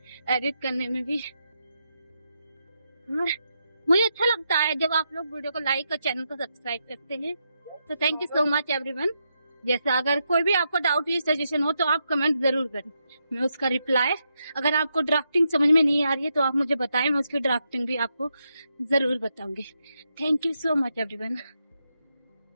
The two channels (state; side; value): inverted; both; correlation -0.83